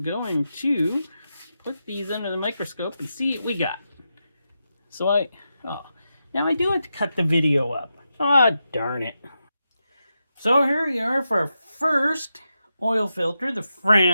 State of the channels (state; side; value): inverted; both; correlation -0.88